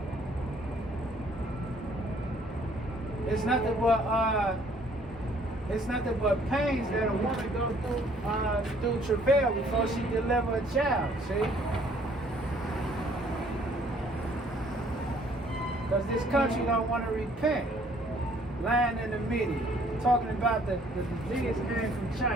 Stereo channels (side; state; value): both; normal; correlation 0.61